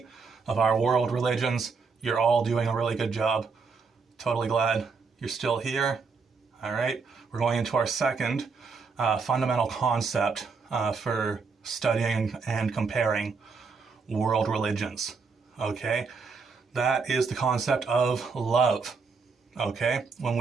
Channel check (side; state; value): left; quieter; 4.9 dB